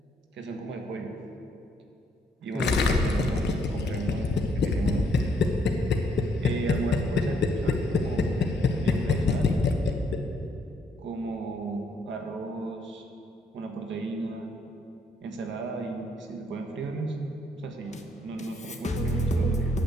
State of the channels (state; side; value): normal; both; correlation 0.70